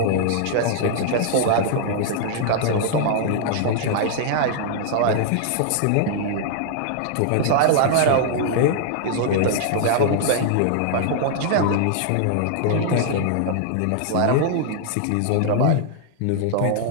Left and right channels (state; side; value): different; both; correlation -0.01